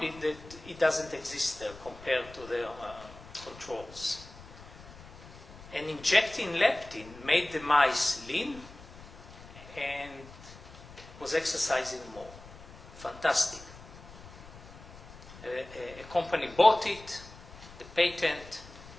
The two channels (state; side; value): noise; left; rumble, 18 dB below the sound